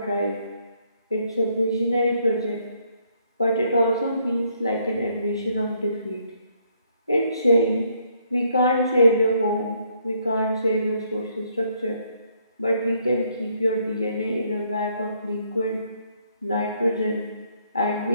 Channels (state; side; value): inverted; both; correlation -0.69